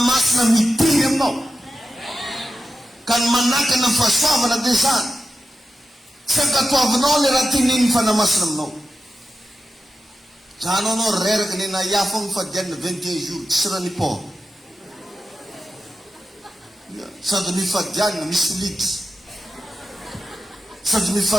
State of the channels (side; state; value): both; normal; correlation 0.91